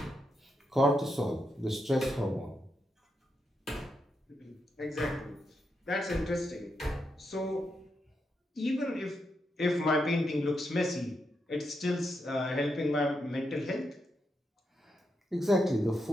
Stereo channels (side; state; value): both; normal; correlation 0.83